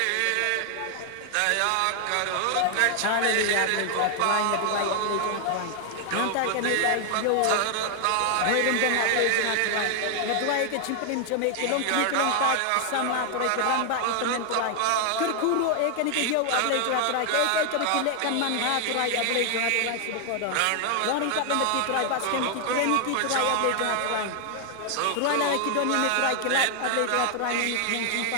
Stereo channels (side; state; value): both; different; correlation 0.00